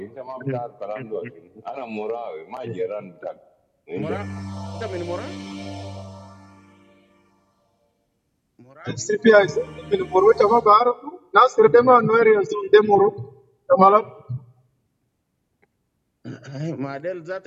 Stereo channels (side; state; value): both; identical; correlation 1.00